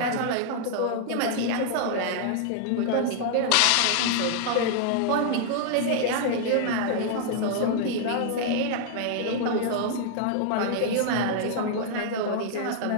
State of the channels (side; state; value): both; different; correlation -0.01